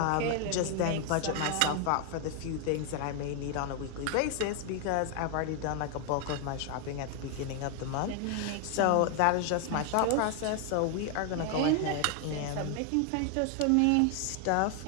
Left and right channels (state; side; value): different; both; correlation 0.00